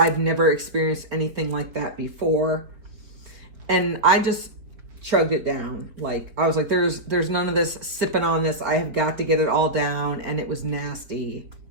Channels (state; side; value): late; left; 4.5 ms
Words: never experienced anything like that before. And I just chugged it down. Like I was like, there's none of this sipping on this. I have got to get it all down. And it was nasty.